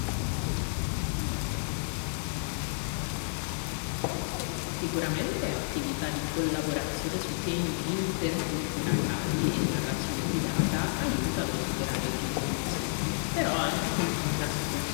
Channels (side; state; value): right; silent; digital silence